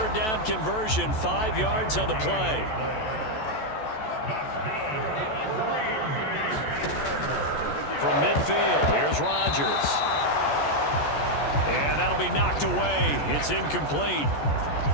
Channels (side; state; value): right; late; 14 ms